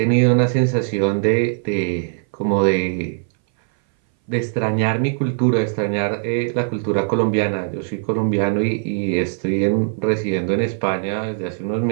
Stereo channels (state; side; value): silent; left; 60 dB below the other